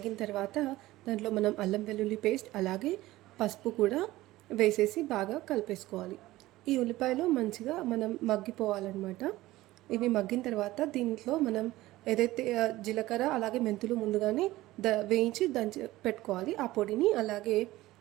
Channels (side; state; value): left; quieter; 17.2 dB